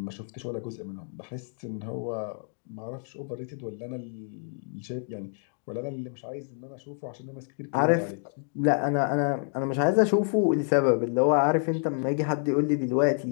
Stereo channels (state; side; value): silent; right; 59 dB below the other